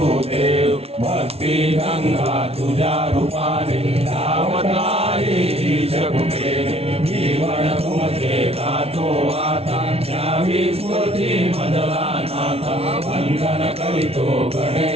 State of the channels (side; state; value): left; late; 0.30 ms